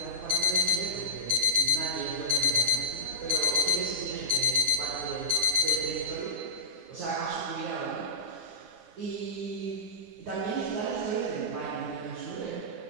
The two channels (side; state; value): left; late; 9.8 ms